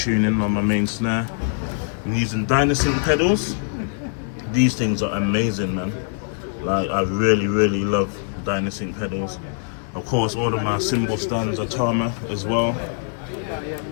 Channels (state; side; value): silent; right; 64 dB below the other